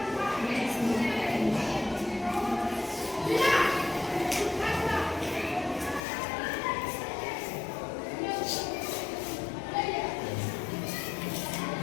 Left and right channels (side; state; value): right; drops out; at 6.0 s